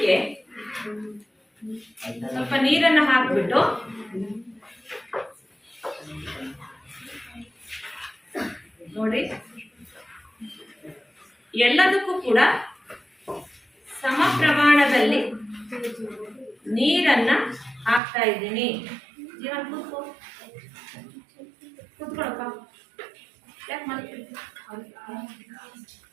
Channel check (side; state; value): left; drops out; at 18.0 s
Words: ಸ್ವಲ್ಪ ನೀರನ್ನು ಹಾಕ್ಬಿಟ್ಟು ನೋಡಿ, ಎಲ್ಲದಕ್ಕೂ ಕೂಡ ಸಮ ಪ್ರಮಾಣದಲ್ಲಿ ನೀರನ್ನ ಹಾಕ್ತಾ ಇದ್ದೀನಿ. ಜೀವನ್ ಕೂತ್ಕೊಳಪ್ಪ, ಯಾಕೆ ಮಾಡ್ತೀವಿ?